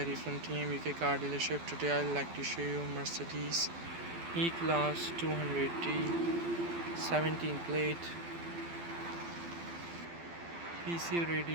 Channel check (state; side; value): late; left; 12 ms